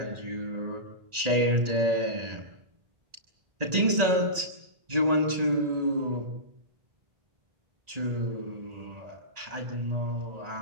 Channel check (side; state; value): left; late; 1.8 ms